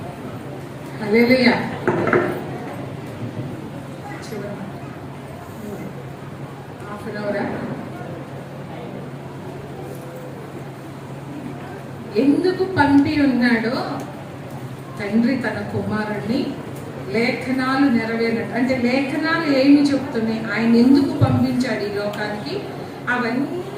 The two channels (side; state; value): both; identical; correlation 1.00